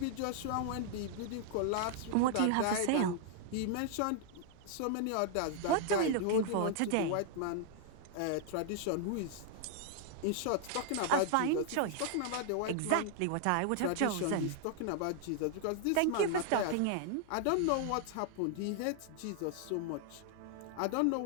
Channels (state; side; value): different; both; correlation -0.01